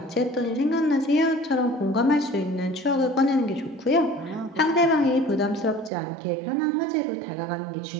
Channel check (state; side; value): drops out; left; at 5.9 s